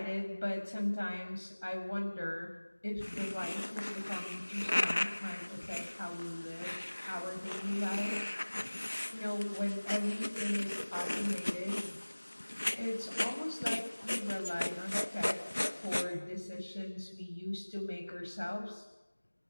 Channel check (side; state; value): both; inverted; correlation -1.00